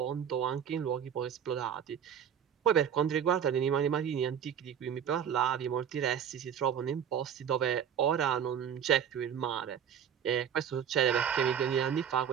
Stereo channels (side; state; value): left; quieter; 8.5 dB